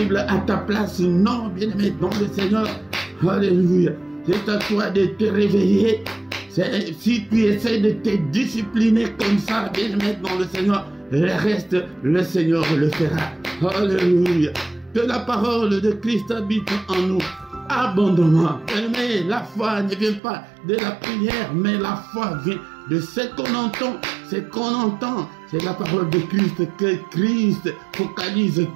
à ta place. Non, bien-aimé dans le Seigneur. Alléluia. C'est à toi de te réveiller. Si tu essaies de te discipliner comme ça, bien-aimé dans le Seigneur, le reste, le Seigneur le fera. Alléluia. Que la parole de Christ habite en nous abondamment. Mais la foi ne vient pas de la prière, mais la foi vient de ce qu'on entend. Ce qu'on entend, c'est la parole de Christ. Que Christ,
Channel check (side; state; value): left; drops out; at 20.2 s